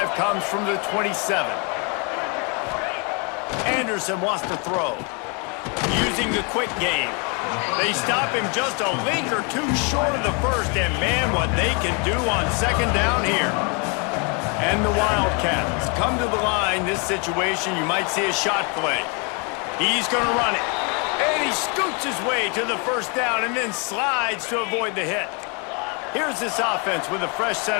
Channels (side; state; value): right; quieter; 34.3 dB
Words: comes from the 27. Anderson wants to throw. Using the quick game. They stop him just a link or two short of the first, and man, what they can do on second down here. And the Wildcats come to the line. This situation, you might see a shot play. He's going to run it. And he scoots his way to the first down and then slides to avoid the hit. Here's this offense with a fresh